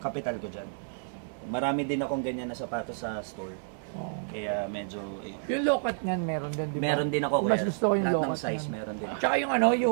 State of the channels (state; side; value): silent; left; digital silence